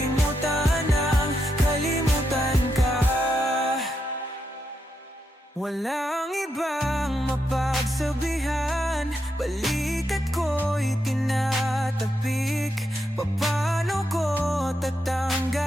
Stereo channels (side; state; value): both; normal; correlation 0.83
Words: ang kalimutan ka. Walang ibang mapagsabihan, balikat ko'y tinatapik. Paano ko